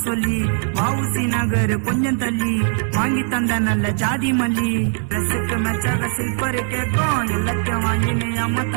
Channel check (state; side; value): silent; left; digital silence